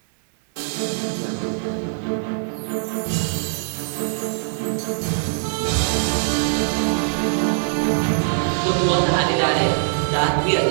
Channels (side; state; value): left; silent; digital silence